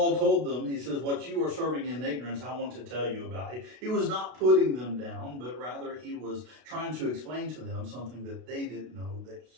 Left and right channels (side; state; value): left; late; 32 ms